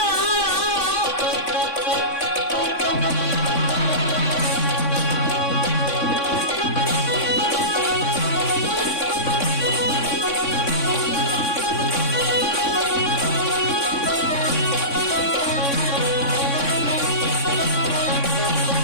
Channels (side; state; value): right; late; 3.6 ms